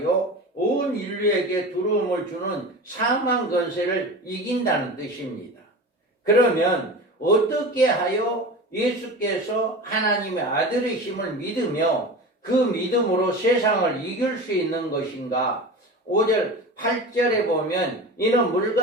온 인류에게 두려움을 주는 사망 권세를 이긴다는 뜻입니다. 그러면 어떻게 하여 예수께서 하나님의 아들이심을 믿으며 그 믿음으로 세상을 이길 수 있는 것인가? 5절 8절에 보면 이는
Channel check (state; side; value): normal; both; correlation 0.31